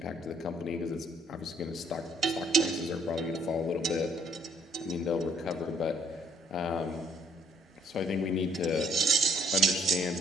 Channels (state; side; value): normal; both; correlation 0.62